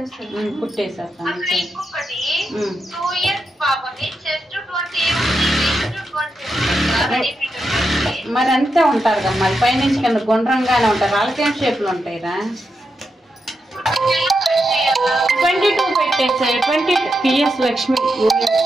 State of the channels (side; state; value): both; normal; correlation 0.85